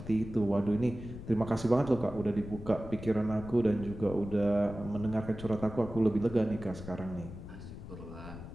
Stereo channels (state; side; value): noise; left; rumble, 11 dB below the sound